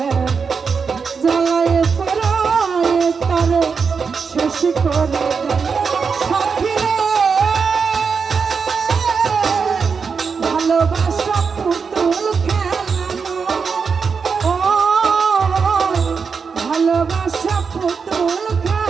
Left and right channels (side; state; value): left; quieter; 5.6 dB